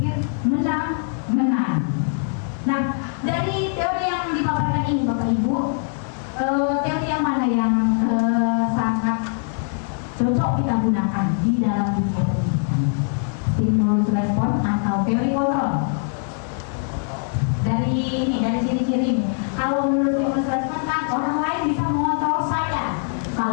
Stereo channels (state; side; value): silent; right; 56 dB below the other